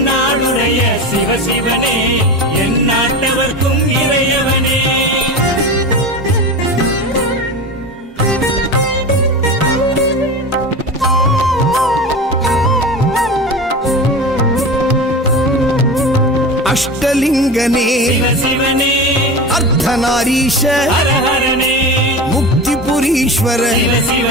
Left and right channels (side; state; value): both; normal; correlation 0.28